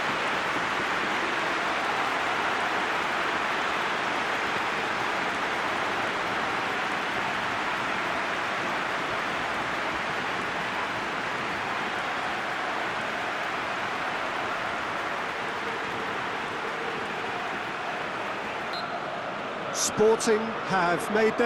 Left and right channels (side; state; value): both; identical; correlation 1.00